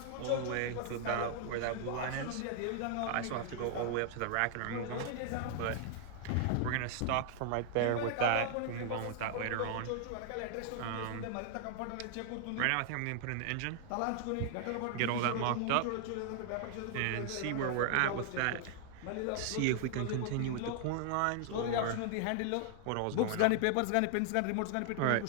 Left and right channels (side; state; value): both; different; correlation 0.00